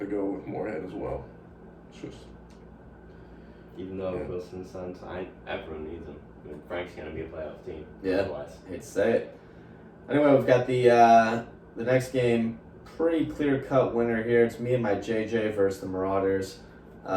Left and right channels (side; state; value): both; identical; correlation 1.00